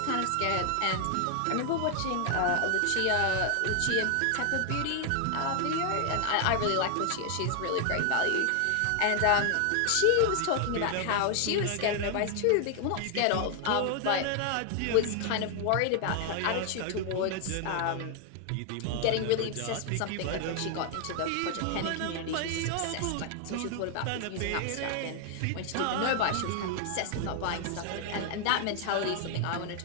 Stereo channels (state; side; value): different; both; correlation 0.00